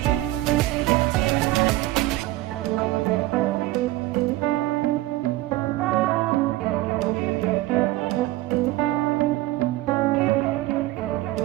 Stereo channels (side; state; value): left; quieter; 17.3 dB